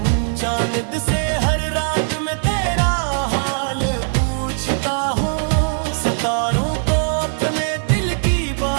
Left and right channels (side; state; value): left; silent; digital silence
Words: चांद से हर रात में तेरा हाल पूछता हूँ, सितारों को अपने दिल की